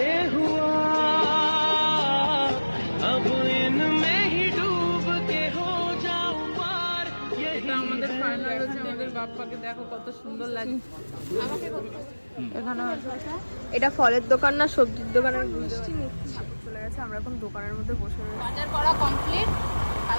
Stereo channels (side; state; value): both; inverted; correlation -1.00